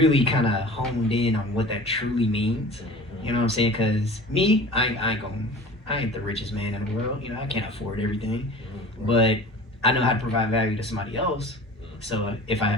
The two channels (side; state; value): both; normal; correlation 0.40